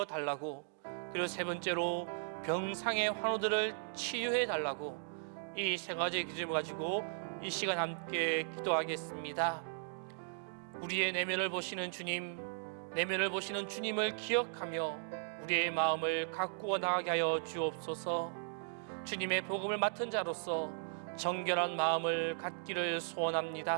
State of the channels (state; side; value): silent; left; digital silence